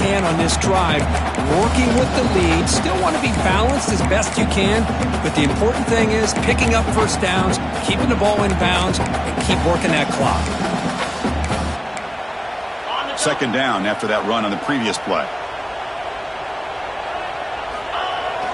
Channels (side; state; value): both; identical; correlation 1.00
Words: can on this drive, working with the lead. Still want to be balanced as best you can, but the important thing is picking up first downs, keeping the ball in bounds, and keep working that clock. Second down after that run on the previous play.